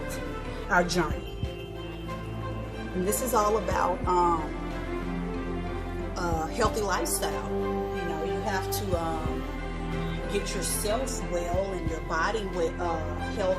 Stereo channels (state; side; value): identical; both; correlation 1.00